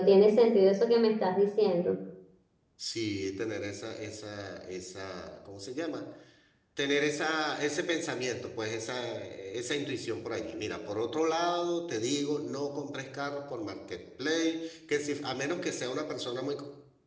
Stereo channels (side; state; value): both; identical; correlation 1.00